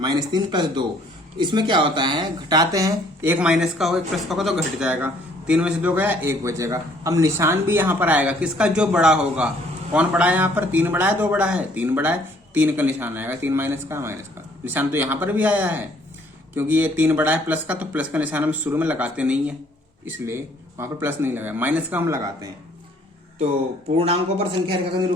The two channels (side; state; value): both; normal; correlation 0.61